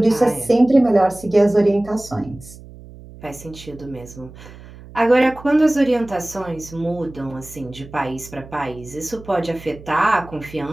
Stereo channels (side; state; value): right; noise; hum, 18 dB below the sound